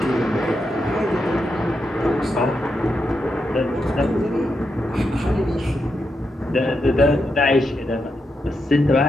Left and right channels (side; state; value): both; normal; correlation 0.84